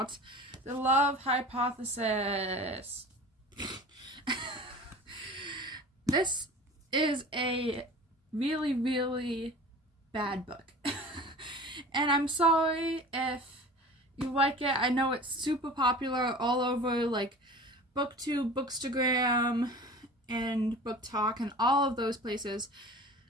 the love hypothesis. This is a really, really bad book. And I'm sorry if you like it. I know it's super popular all over, like, BookTube, Bookstagram, and Book Talk, and all of those places.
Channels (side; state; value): both; normal; correlation 0.40